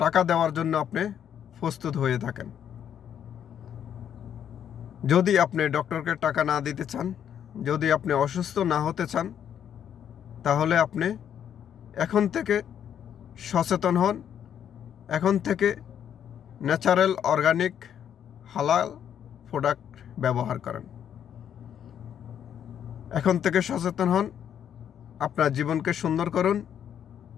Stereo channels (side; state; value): right; quieter; 9.2 dB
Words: টাকা দেওয়ার জন্য আপনি প্রস্তুত হয়ে থাকেন। যদি আপনি ডক্টরকে টাকা না দিতে চান, যদি আপনি অসুস্থ না হতে চান, তাহলে আপনি এখন থেকে সচেতন হন। এখন থেকে ন্যাচারাল অর্গানিক হালাল প্রোডাক্ট ব্যবহার করেন। এখন থেকে সচেতন হন, আপনার জীবনকে সুন্দর করুন,